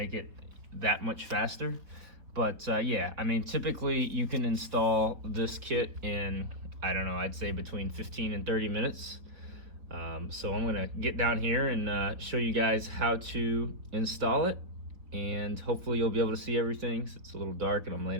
it that much faster. But yeah, I mean, typically you can install this kit in, I don't know, I'd say between 15 and 30 minutes. So I'm gonna get down here and show you guys how to install it, and hopefully you'll be able to see everything. It's a little dark and I'm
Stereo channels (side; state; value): left; late; 4.4 ms